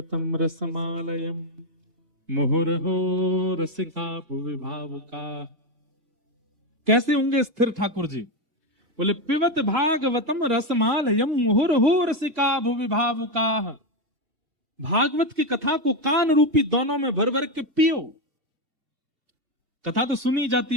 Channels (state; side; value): late; left; 2.7 ms